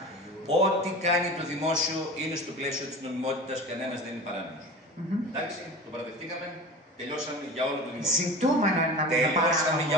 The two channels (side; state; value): both; normal; correlation 0.34